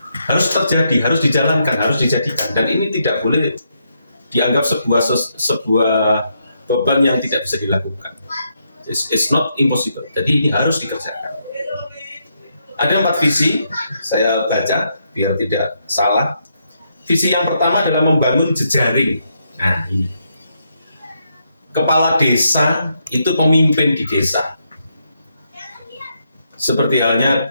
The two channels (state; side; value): inverted; both; correlation -0.79